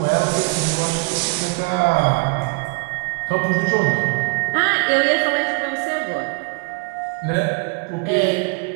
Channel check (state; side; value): quieter; left; 32.1 dB